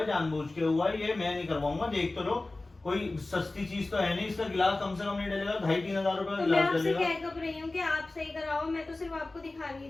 जानबूझ के हुआ है, ये मैं नहीं करवाऊंगा। देख तो लो, कोई सस्ती चीज तो है नहीं, इसका गिलास कम से कम नहीं डलेगा, 2,500-3 हजार रुपए का तो मैं गिलास आपसे डलेगा। कह कब रही हूँ कि आप सही कराओ, मैं तो सिर्फ आपको दिखा रही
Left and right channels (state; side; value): quieter; right; 3.0 dB